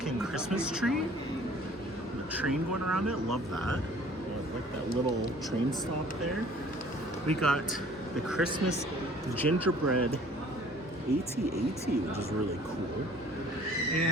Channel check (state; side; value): normal; both; correlation 0.53